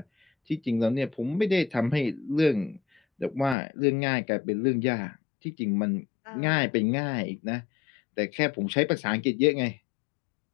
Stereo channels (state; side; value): drops out; right; at 3.6 s